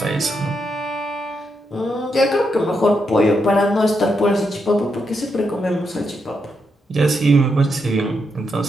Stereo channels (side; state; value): both; normal; correlation 0.82